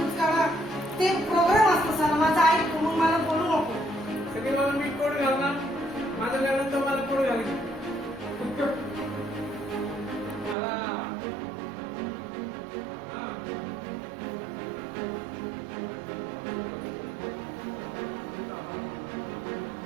काढा ते प्रोग्राम असतो सर माझा ऐक मग मला बोलू नको सगळे मला मी कोड घालणार माझं घालून तर मला कोड घालेल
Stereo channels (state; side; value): drops out; left; at 10.6 s